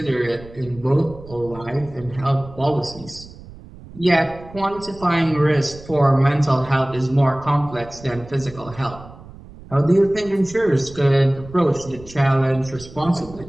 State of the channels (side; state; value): right; noise; rumble, 18 dB below the sound